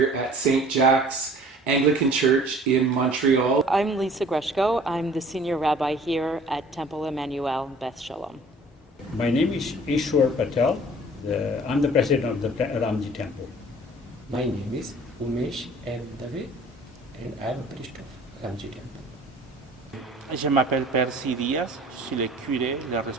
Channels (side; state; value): both; normal; correlation 0.50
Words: at St. Jack's Anglican Church in Montreal. I'm Lisa Greshko. I'm the senior rabbi here at Temple Emmanuel in Beth Shalom. My name is Ishwar Patel. I'm the president of the Ramji Temple. My name is Umesh M. Dave and I'm a priest of Ramji Temple. Je m'appelle Percy Diaz, je suis le curé, le